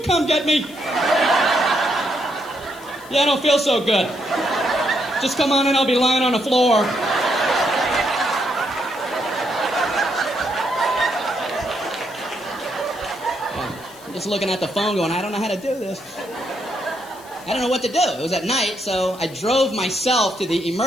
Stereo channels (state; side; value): noise; left; hiss, 21 dB below the sound